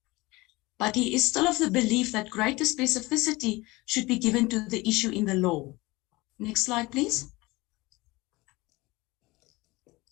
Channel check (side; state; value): right; quieter; 21.9 dB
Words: But he is still of the belief that greater specificity should be given to the issue in the law. Next slide, please.